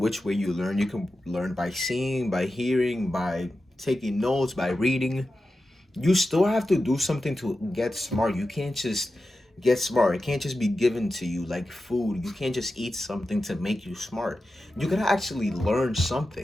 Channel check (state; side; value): normal; both; correlation 0.92